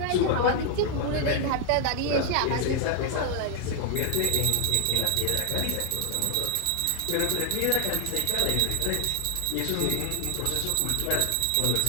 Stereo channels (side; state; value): both; different; correlation 0.00